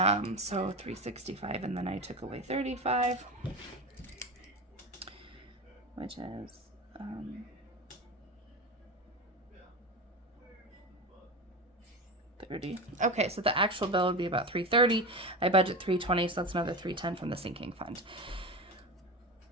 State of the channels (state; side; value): normal; both; correlation 0.23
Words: so 365, and then I took away 35, which is, 30. Okay, so the actual bill would be about 330. I budget 320, so that's another 310 from the sinking fund.